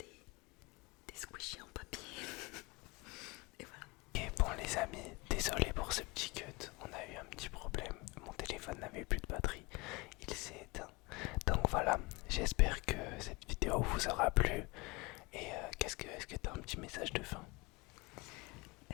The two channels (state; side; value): quieter; right; 25.2 dB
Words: squishies en papier. Et voilà. Et bon les amis, désolé pour ce petit cut, on a eu un petit problème, mon téléphone n'avait plus de batterie, il s'est éteint. Donc voilà, j'espère que cette vidéo vous aura plu. Et est-ce que tu as un petit message de fin?